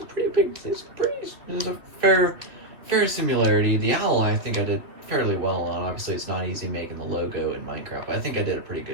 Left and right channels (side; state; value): left; late; 3.3 ms